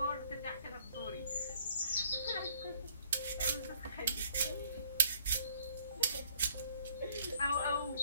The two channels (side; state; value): both; inverted; correlation -0.61